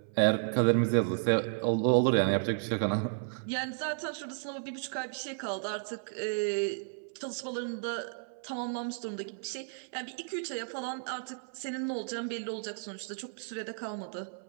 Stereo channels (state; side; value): silent; left; 56 dB below the other